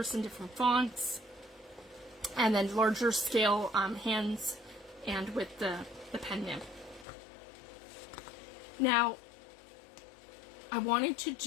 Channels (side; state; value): right; drops out; at 7.1 s